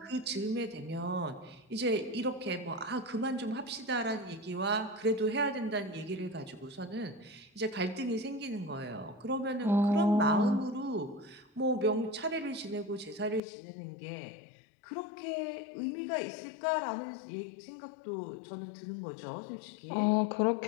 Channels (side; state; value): right; drops out; at 13.4 s